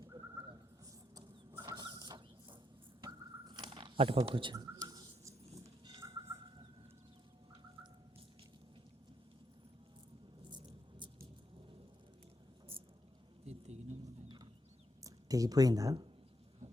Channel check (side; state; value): both; normal; correlation 0.80